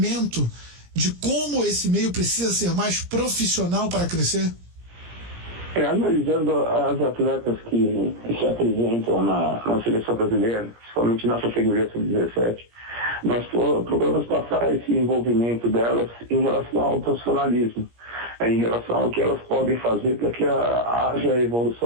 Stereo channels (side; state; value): left; late; 17 ms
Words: de como esse meio precisa ser mais profissional para crescer? Analisando as atletas que se apresentam na seleção brasileira, principalmente na categoria sub-17, nós procuramos passar esse envolvimento delas em relação ao profissionalismo, em relação ao que elas podem fazer para que haja